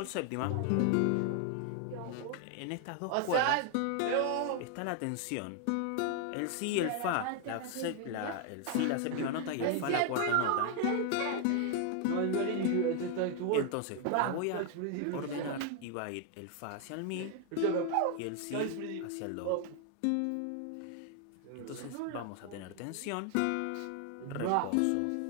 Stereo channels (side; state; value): both; different; correlation 0.00